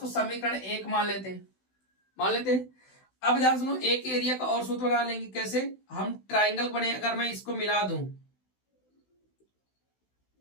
समीकरण 1 मान लेते हैं, मान लेते हैं। अब ध्यान सुनो, एक एरिया का और सूत्र बना लेंगे, कैसे, हम ट्राइंगल बने, अगर मैं इसको मिला दूं,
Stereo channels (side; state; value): right; late; 16 ms